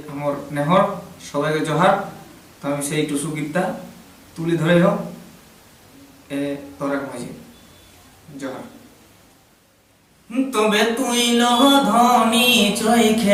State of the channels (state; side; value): identical; both; correlation 1.00